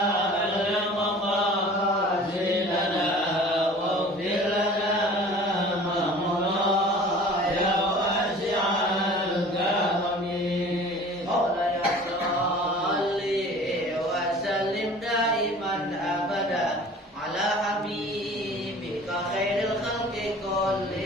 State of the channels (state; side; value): normal; both; correlation 0.45